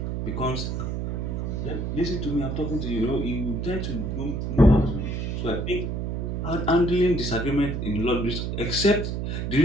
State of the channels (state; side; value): noise; right; hum, 2 dB below the sound